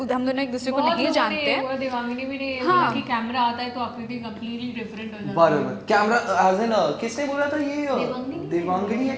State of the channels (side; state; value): both; identical; correlation 1.00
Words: हम दोनों एक दूसरे को नहीं जानते हैं. और देवांगिनी भी ने हाँ. कि कैमरा आता है तो आकृति कंप्लीटली डिफरेंट हो जाती है. बराबर. कैमरा as in किसने बोला था ये देवांगिनी? देवांगिनी या